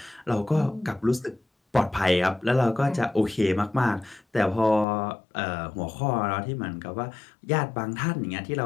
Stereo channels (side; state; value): right; drops out; at 4.9 s